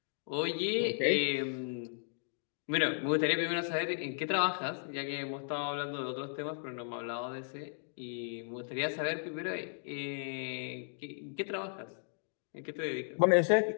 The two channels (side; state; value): right; silent; digital silence